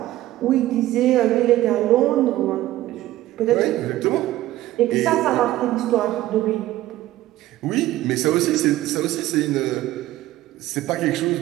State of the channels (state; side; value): quieter; left; 15.3 dB